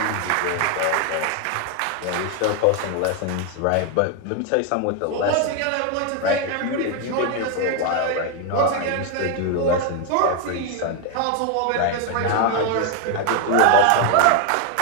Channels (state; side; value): different; both; correlation 0.01